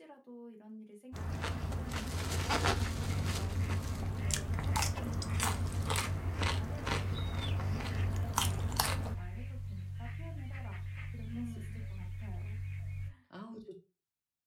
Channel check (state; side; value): identical; both; correlation 1.00